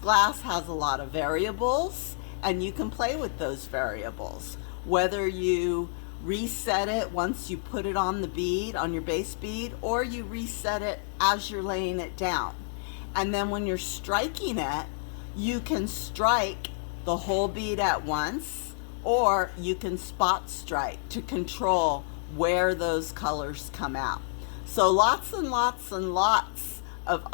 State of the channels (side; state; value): right; silent; digital silence